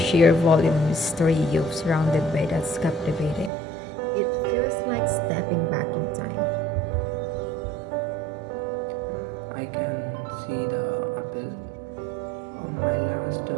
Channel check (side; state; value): left; drops out; at 3.5 s